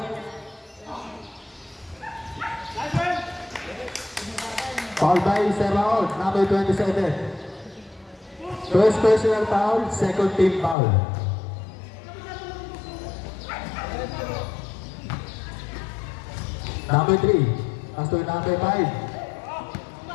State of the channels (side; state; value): right; drops out; at 10.8 s